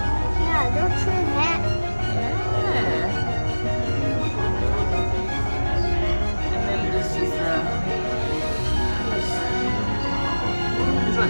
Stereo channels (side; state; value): both; inverted; correlation -1.00